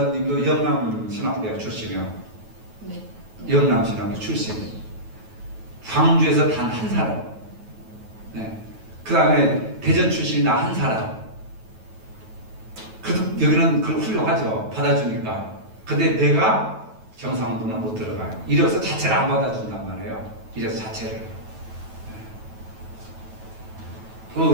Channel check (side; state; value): left; late; 9.2 ms